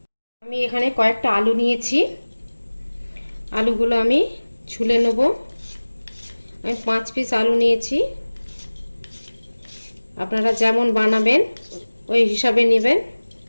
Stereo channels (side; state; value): both; inverted; correlation -1.00